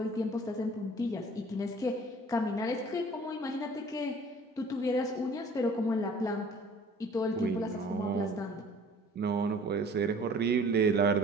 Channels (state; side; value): normal; both; correlation 0.50